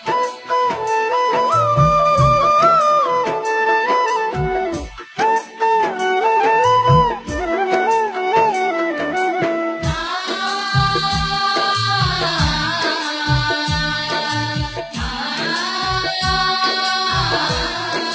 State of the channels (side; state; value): both; identical; correlation 1.00